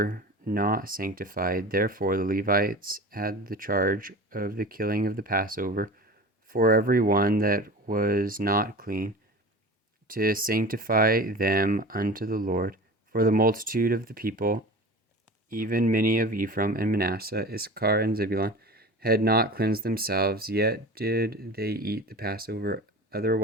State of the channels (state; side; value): normal; both; correlation 0.35